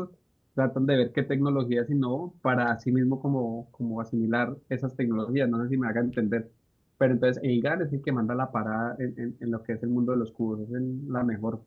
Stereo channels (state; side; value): identical; both; correlation 1.00